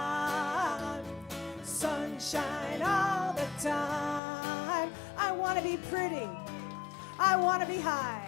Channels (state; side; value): drops out; right; at 4.2 s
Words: Sunshine all the time. I want to be pretty. I want to be